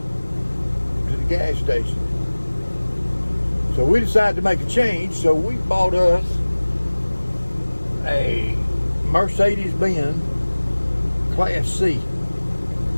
the gas station. So we decided to make a change, so we bought us a Mercedes-Benz Class C.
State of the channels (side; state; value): both; inverted; correlation -1.00